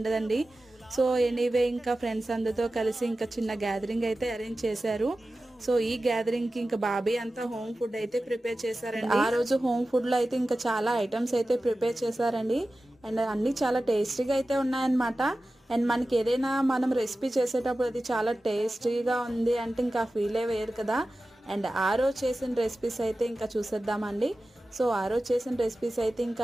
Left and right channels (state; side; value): normal; both; correlation 0.95